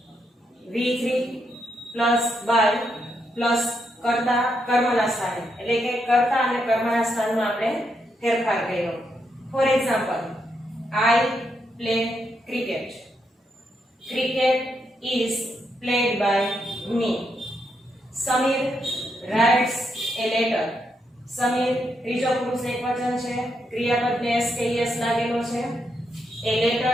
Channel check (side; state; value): both; normal; correlation 0.80